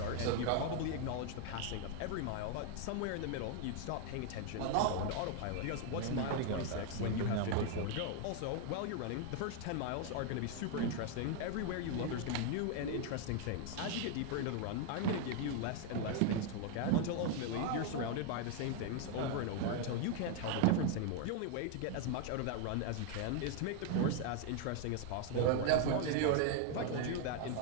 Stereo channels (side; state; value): both; different; correlation 0.01